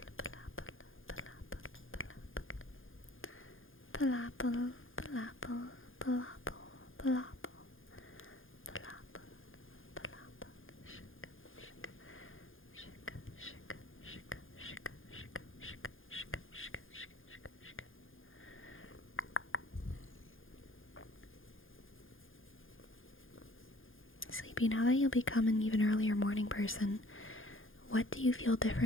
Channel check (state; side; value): late; right; 0.59 ms